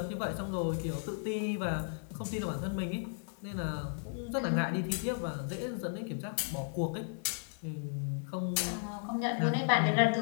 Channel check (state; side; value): silent; right; 55 dB below the other